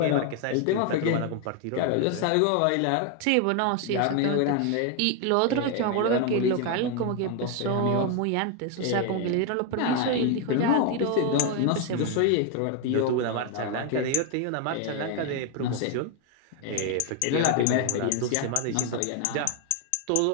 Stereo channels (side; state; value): both; different; correlation 0.01